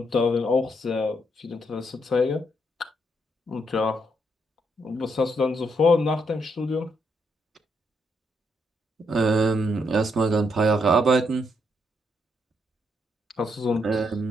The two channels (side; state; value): both; normal; correlation 0.77